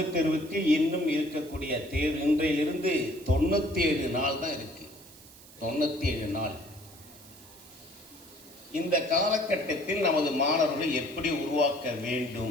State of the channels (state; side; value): noise; right; hiss, 21 dB below the sound